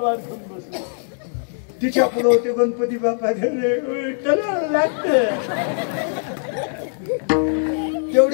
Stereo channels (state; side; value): silent; right; digital silence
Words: घेऊन बसली. तिच्या पुढे होते गणपती बाप्पा, तलवार लागते.